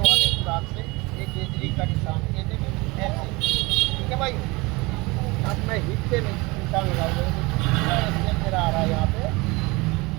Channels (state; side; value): quieter; left; 24.3 dB